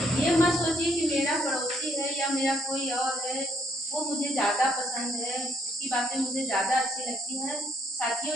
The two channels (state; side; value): normal; both; correlation 0.70